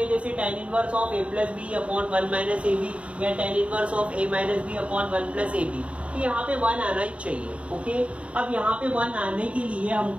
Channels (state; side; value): late; left; 0.062 ms